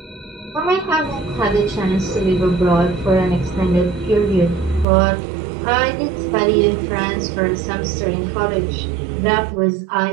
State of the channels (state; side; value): drops out; left; at 4.9 s